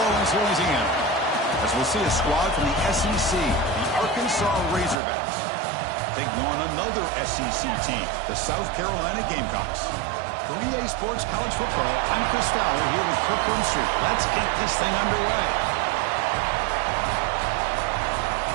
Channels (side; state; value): left; drops out; at 5.0 s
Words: Orleans, Louisiana. As we'll see a squad from the SEC, the Arkansas Razorbacks, taking on another SEC team, the South Carolina Gamecocks. For EA Sports College Football, I'm Chris Fowler here with Kirk Street. Let's get this thing underway.